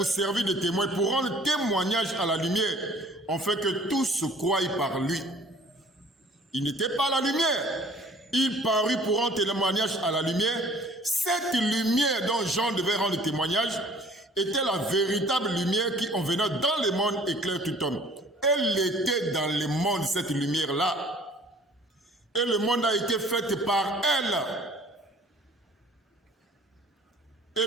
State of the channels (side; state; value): both; normal; correlation 0.52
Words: servir de témoin, pour rendre témoignage à la lumière, afin que tous se croient par lui. Il n'était pas la lumière. Il parut pour rendre témoignage à la lumière. Cette lumière dont Jean devait rendre témoignage était la véritable lumière qui, en venant dans le monde, éclaire tout homme. Elle était dans le monde, cette lumière-là. Et le monde a été fait par elle. Et